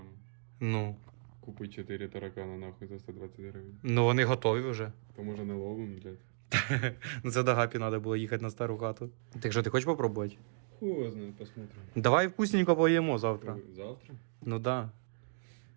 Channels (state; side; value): silent; left; digital silence